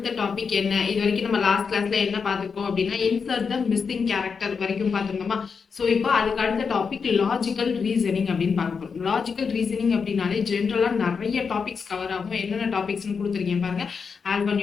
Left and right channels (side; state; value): right; quieter; 5.7 dB